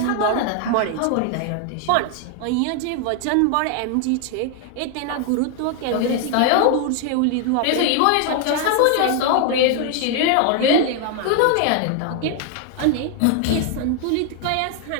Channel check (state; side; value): different; both; correlation 0.00